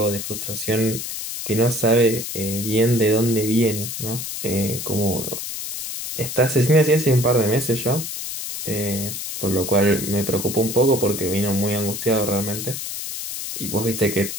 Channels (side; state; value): left; noise; hiss, 6 dB below the sound